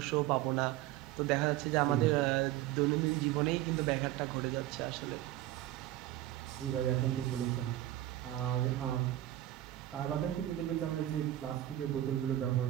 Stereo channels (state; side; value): quieter; left; 14.3 dB